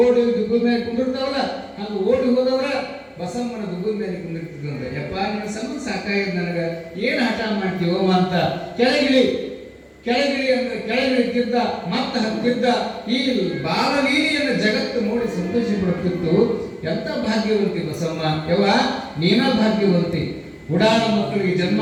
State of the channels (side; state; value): both; identical; correlation 1.00